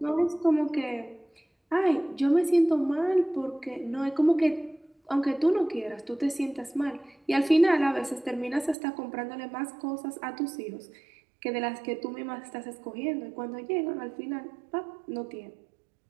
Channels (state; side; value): drops out; left; at 8.8 s